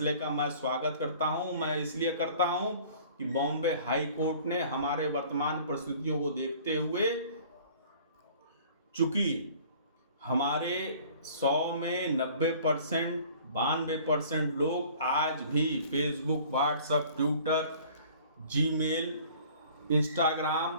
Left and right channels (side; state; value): both; inverted; correlation -0.50